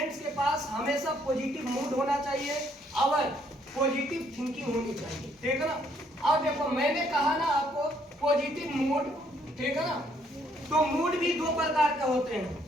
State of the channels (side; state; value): both; normal; correlation 0.68